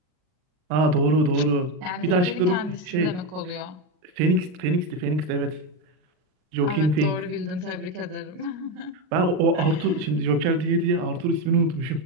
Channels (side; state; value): left; late; 39 ms